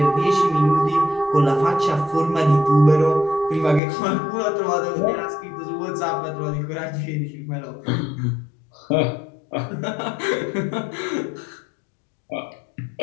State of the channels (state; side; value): drops out; right; at 3.8 s